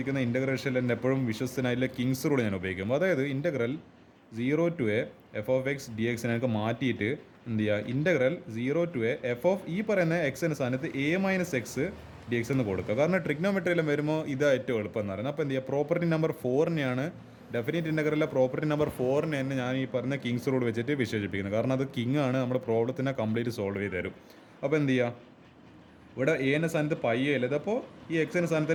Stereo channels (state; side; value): identical; both; correlation 1.00